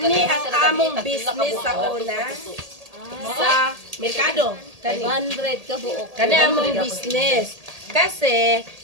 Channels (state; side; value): late; left; 1.8 ms